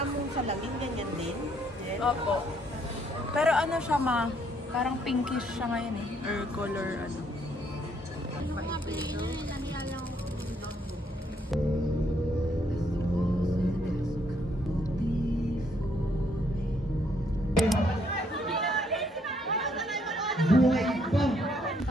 mong salamin, ganyan din? Yes. Opo. Pero ano siya ma, parang pinkish siya ngayon eh. Or color ano. Mga plano yun, nahiyala ko. Buhay pa!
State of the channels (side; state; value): both; normal; correlation 0.70